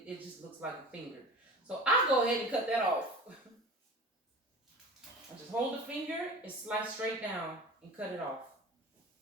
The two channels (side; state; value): both; normal; correlation 0.37